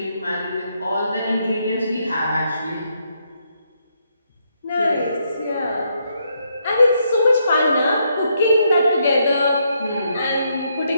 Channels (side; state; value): both; inverted; correlation -0.76